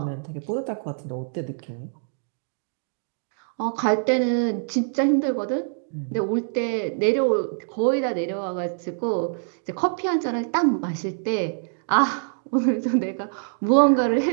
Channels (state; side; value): silent; left; digital silence